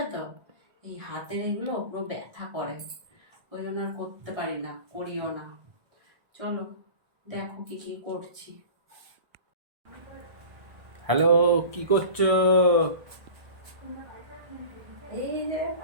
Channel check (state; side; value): late; left; 1.6 ms